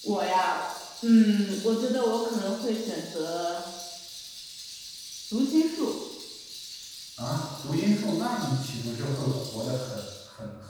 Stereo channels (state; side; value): identical; both; correlation 1.00